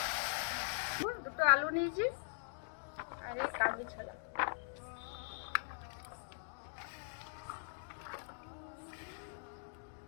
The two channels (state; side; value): silent; right; digital silence